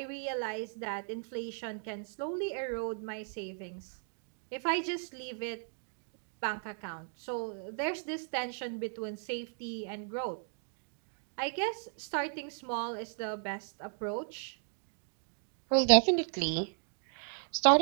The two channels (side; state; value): left; silent; 54 dB below the other